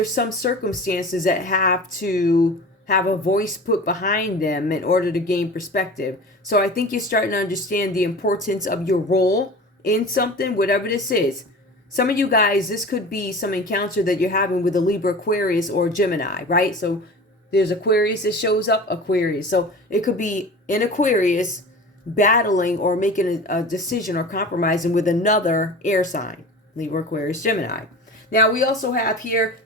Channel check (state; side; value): normal; both; correlation 0.36